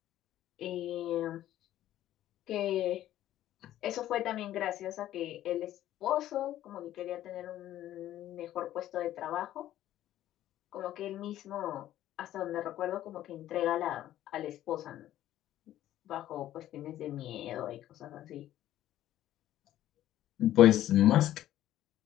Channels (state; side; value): quieter; right; 13.1 dB